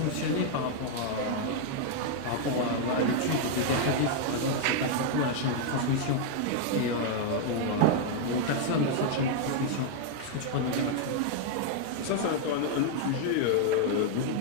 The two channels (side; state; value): both; different; correlation 0.00